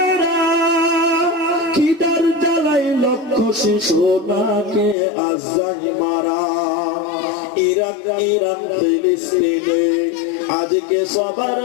খিদার জ্বালাই লক্ষ শিশু নাকে আজাই মারা ইরাক ইরান ফিলিস্তিনে আজকে সবার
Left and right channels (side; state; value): right; drops out; at 5.0 s